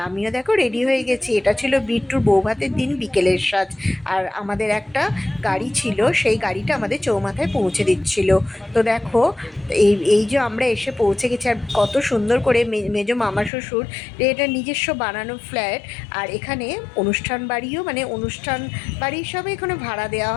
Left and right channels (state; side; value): drops out; right; at 13.5 s